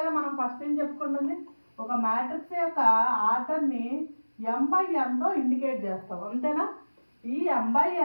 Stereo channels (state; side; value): inverted; both; correlation -1.00